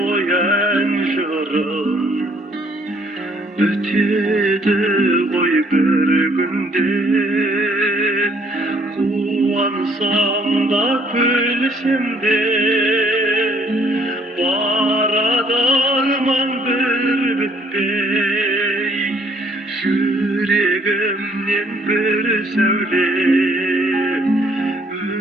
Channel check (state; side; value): normal; both; correlation 0.64